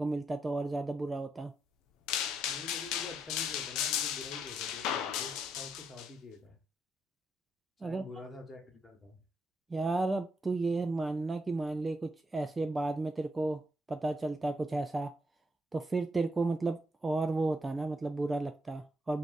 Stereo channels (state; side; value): normal; both; correlation 0.79